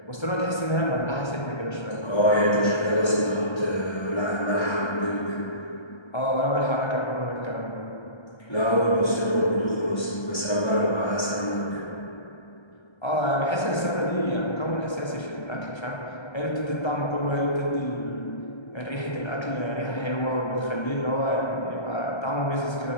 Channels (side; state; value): right; late; 1.3 ms